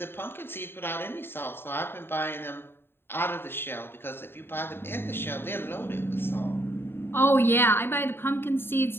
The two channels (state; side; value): late; right; 0.11 ms